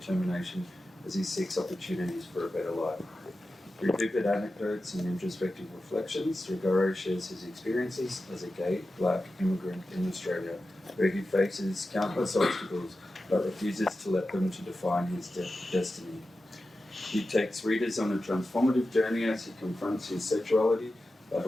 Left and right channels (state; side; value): normal; both; correlation 0.93